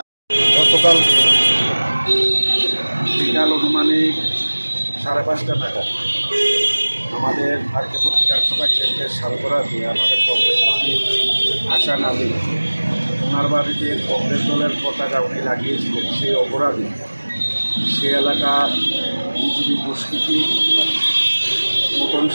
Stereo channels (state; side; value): inverted; both; correlation -1.00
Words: গতকাল বিকাল অনুমানিক 5:30 নাগাদ আমাদের আরকেপুর বিধানসভা কেন্দ্রের সালগড়া দিয়ে আমাদের কংগ্রেস কর্মী হাসান আলী, ওনার বাড়িতে কংগ্রেস দলের পতাকা উনি লাগিয়েছিলেন। সেই অপরাধী সে এলাকা বিজেপি দুষ্কৃতী নূতন